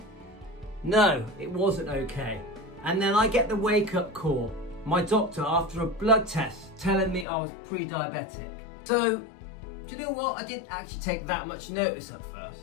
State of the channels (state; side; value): drops out; right; at 7.2 s